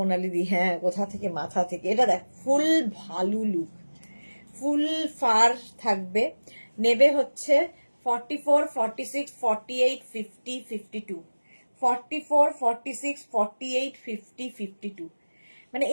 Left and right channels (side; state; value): both; inverted; correlation -1.00